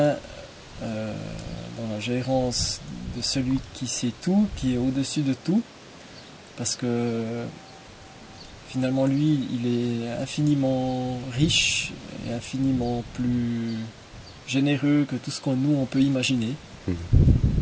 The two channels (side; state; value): both; identical; correlation 1.00